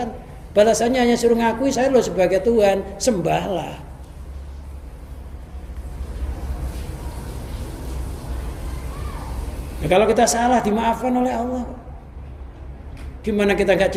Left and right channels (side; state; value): both; identical; correlation 1.00